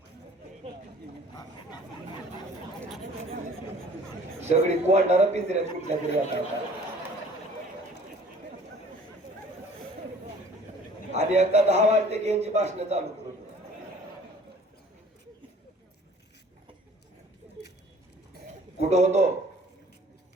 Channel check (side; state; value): both; normal; correlation 0.52